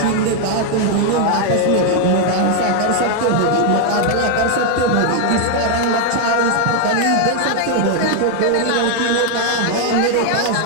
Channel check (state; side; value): different; both; correlation 0.00